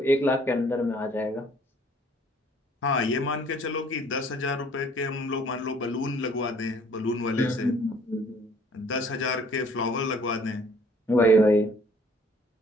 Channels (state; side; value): normal; both; correlation 0.57